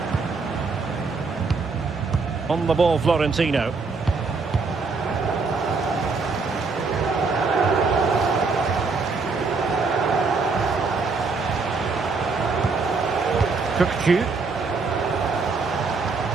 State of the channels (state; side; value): quieter; left; 4.4 dB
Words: On the ball, Florentino. Cookchu.